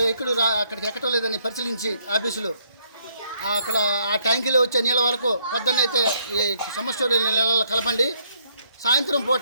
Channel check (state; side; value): inverted; both; correlation -0.71